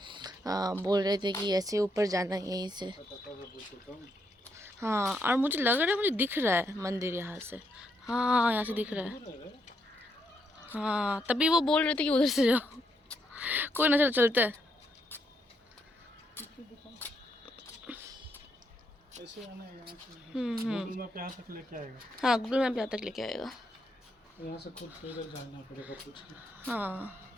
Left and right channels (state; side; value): normal; both; correlation 0.77